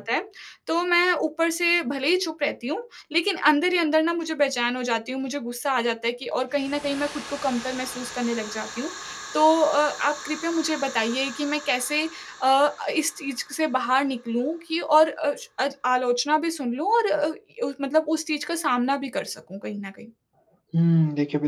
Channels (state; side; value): identical; both; correlation 1.00